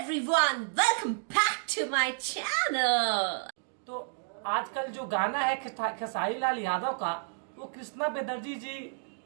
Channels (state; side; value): silent; left; digital silence